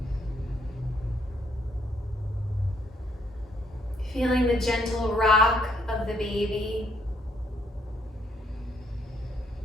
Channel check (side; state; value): both; normal; correlation 0.71